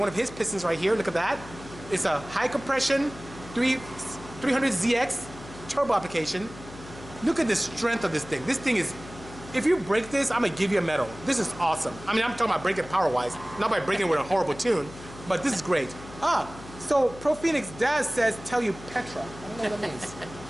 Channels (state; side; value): noise; left; hum, 16 dB below the sound